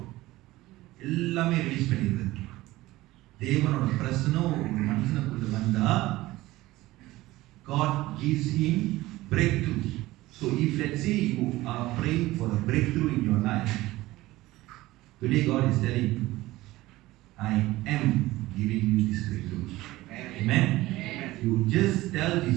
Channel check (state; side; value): quieter; left; 17.9 dB